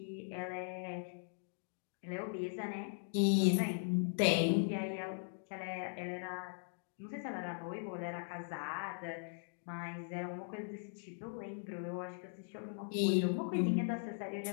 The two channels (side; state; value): right; silent; digital silence